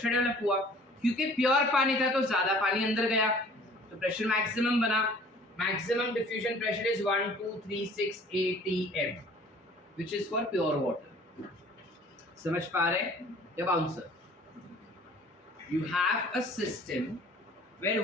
डेवलप हुआ, क्योंकि प्योर पानी था तो ज्यादा पानी अंदर गया तो प्रेशर मैक्सिमम बना। Maximum diffusion pressure is 1236 atm which is for pure water. समझ पा रहे हैं? अब answer, you have a system where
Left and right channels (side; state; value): both; normal; correlation 0.51